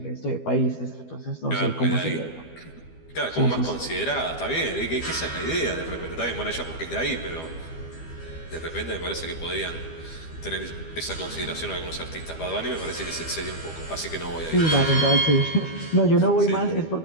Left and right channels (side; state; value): right; late; 12 ms